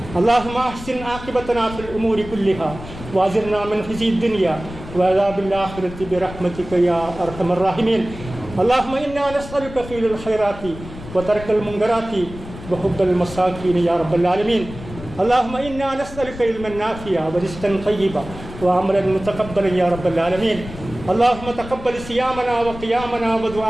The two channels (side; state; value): left; noise; rumble, 13 dB below the sound